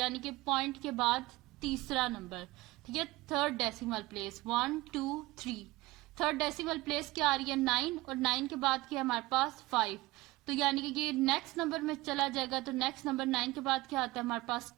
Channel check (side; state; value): left; quieter; 20.2 dB